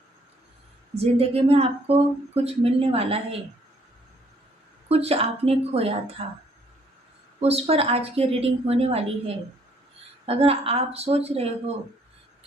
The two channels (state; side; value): normal; both; correlation 0.65